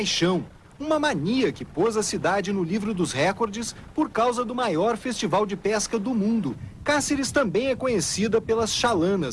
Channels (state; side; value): identical; both; correlation 1.00